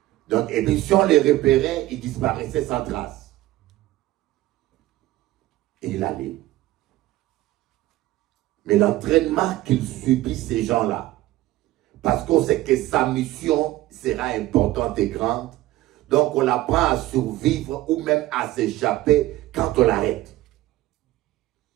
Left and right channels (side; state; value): left; quieter; 16.4 dB